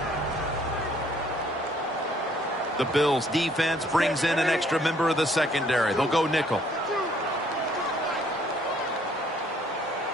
The Bills defense brings in an extra member of the secondary. They'll go nickel.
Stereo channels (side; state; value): both; normal; correlation 0.63